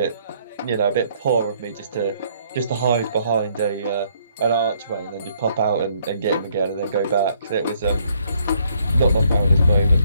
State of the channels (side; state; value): both; inverted; correlation -0.67